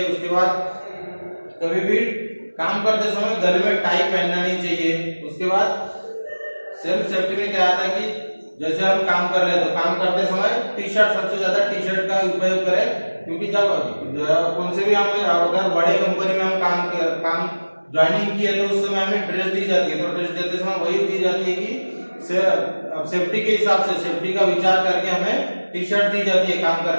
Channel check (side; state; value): both; inverted; correlation -1.00